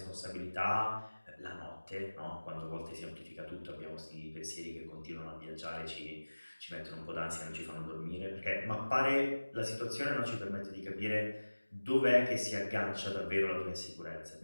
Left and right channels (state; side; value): inverted; both; correlation -1.00